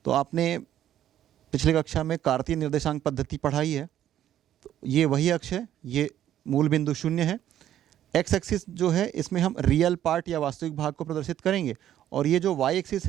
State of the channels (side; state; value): left; quieter; 11.5 dB